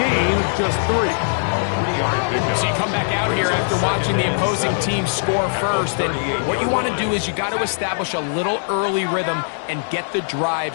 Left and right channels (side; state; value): right; silent; digital silence